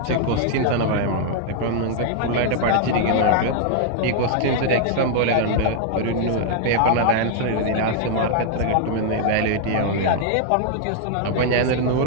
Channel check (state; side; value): different; both; correlation -0.01